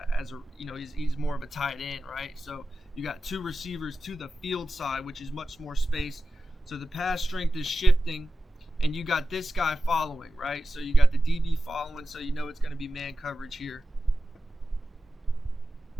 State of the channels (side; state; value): both; normal; correlation 0.92